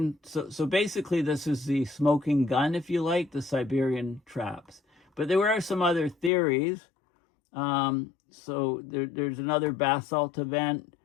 basically this is the smoking gun, if you like, the Siberian Traps. But there were some other theories. So there's another basalt event,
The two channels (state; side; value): drops out; right; at 6.3 s